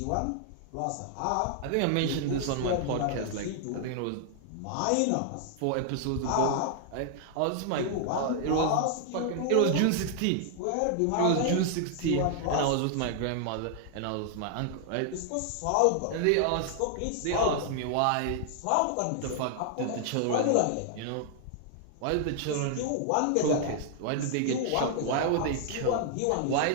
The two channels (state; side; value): different; both; correlation 0.00